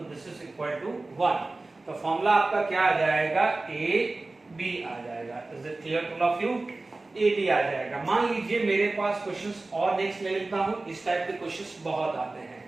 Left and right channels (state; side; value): quieter; left; 3.2 dB